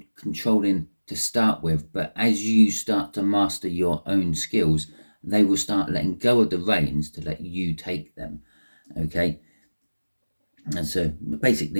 controlling to start with, but as you start to master your own skills, they will start letting go of the reins to let you take them. Okay? And so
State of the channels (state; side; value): inverted; both; correlation -1.00